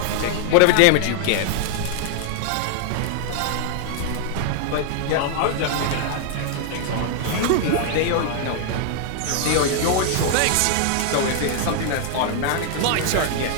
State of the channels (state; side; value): different; both; correlation 0.00